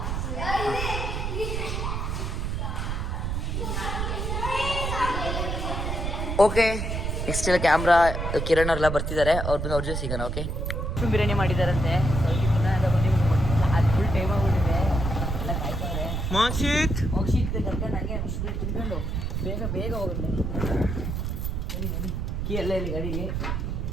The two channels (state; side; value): noise; right; rumble, 2 dB below the sound